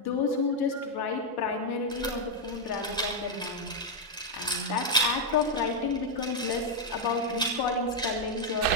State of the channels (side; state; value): both; normal; correlation 0.00